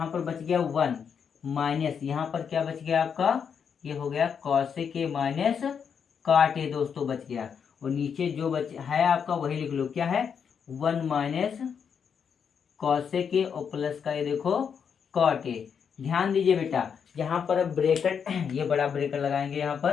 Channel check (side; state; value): right; quieter; 7.0 dB